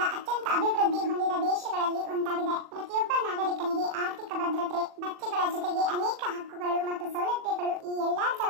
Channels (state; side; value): late; left; 40 ms